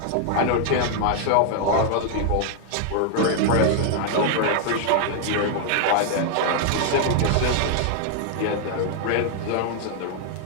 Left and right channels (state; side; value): different; both; correlation 0.00